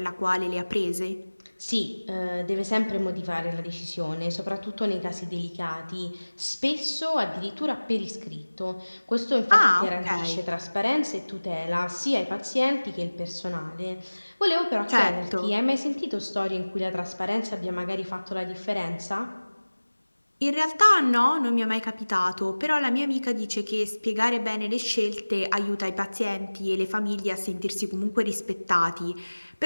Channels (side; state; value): both; inverted; correlation -1.00